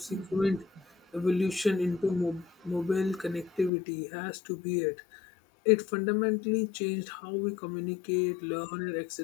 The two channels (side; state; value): right; drops out; at 3.7 s